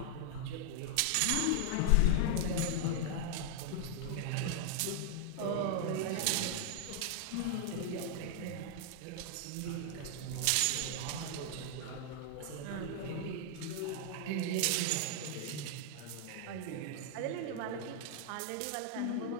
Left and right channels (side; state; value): both; different; correlation -0.01